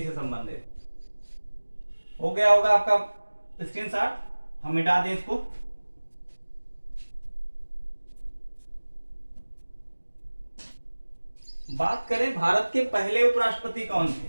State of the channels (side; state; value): both; inverted; correlation -1.00